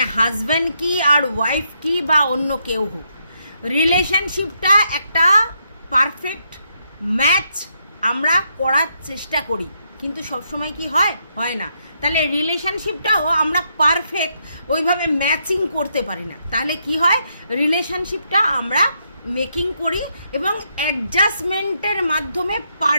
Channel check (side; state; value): both; inverted; correlation -0.78